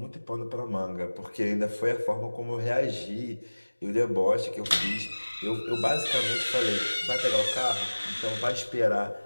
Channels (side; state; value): both; inverted; correlation -1.00